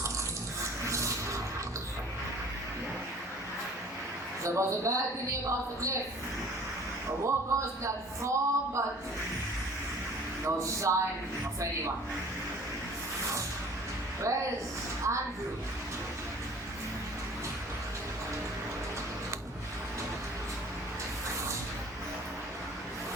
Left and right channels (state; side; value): normal; both; correlation 0.49